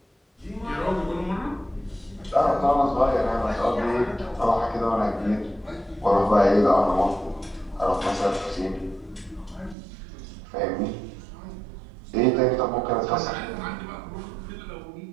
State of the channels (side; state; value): left; drops out; at 9.8 s